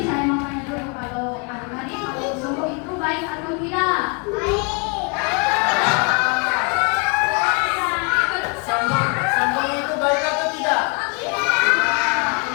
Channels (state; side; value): quieter; right; 34.8 dB